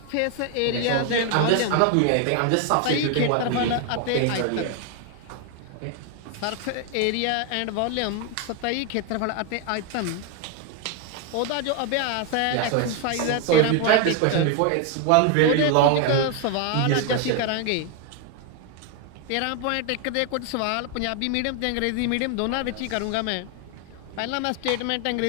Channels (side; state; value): both; different; correlation 0.01